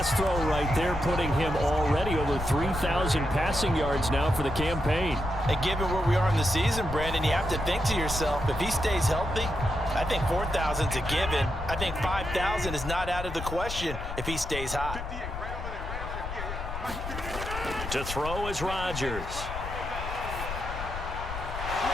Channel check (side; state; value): left; noise; rumble, 7 dB below the sound